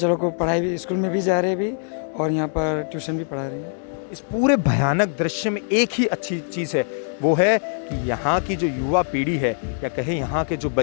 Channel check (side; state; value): right; silent; 64 dB below the other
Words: लोग को पढ़ाई भी, स्कूल में भी जा रहे हैं अभी और यहाँ पर ट्यूशन भी पढ़ा रहे हैं। इस पूरे भयानक दृश्य में एक ही अच्छी चीज़ है, वो है कि यहाँ की जो युवा पीढ़ी है या कहें यहाँ के जो